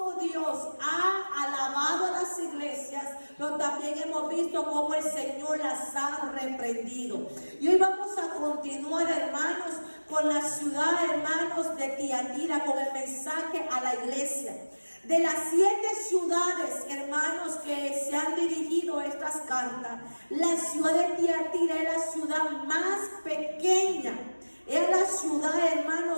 Dios ha alabado a las iglesias, pero también hemos visto cómo el Señor las ha reprendido. Y hoy vamos a continuar, hermanos, con la ciudad, hermanos, de Tiatira, con el mensaje a la iglesia. De las 7 ciudades, hermanos, que se han dirigido estas cartas, la ciudad de Tiatira es la ciudad más pequeña. Es la ciudad,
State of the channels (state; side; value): inverted; both; correlation -1.00